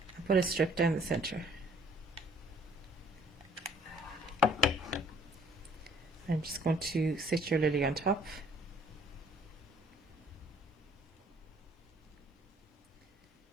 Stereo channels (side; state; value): both; normal; correlation 0.59